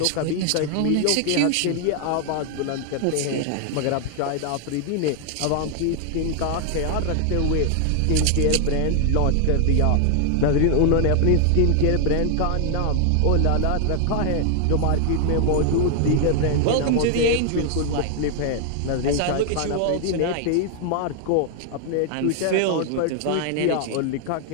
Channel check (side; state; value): both; different; correlation 0.00